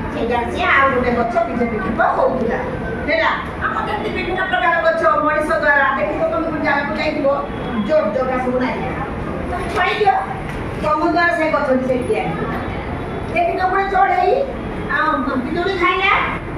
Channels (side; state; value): both; identical; correlation 1.00